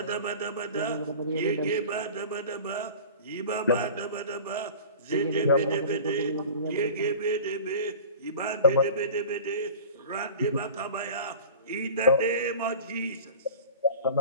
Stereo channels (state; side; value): inverted; both; correlation -0.38